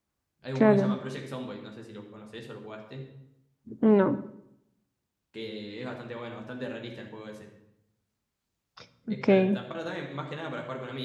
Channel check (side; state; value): both; identical; correlation 1.00